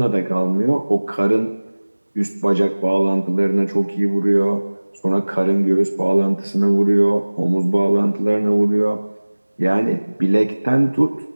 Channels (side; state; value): both; inverted; correlation -1.00